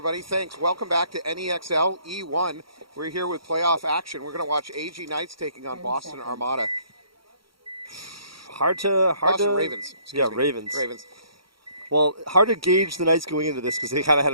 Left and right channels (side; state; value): left; late; 0.74 ms